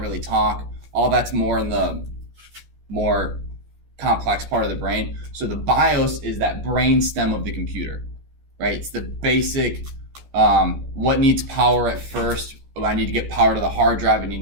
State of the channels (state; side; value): late; left; 14 ms